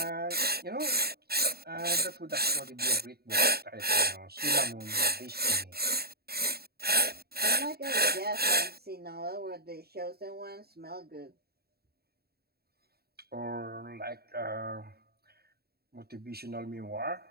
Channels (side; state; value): left; late; 0.46 ms